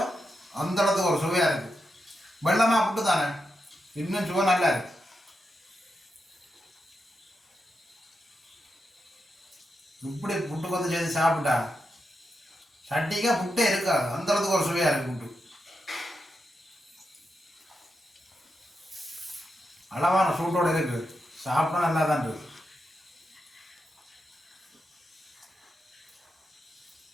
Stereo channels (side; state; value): both; normal; correlation 0.86